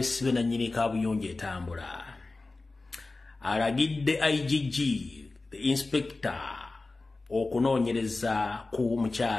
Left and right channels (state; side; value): quieter; right; 3.4 dB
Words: na nnyini kabuyonje etambula. Alagidde IGG the inspector okunoonyereza ku